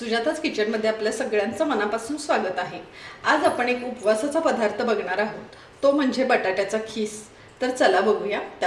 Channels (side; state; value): both; identical; correlation 1.00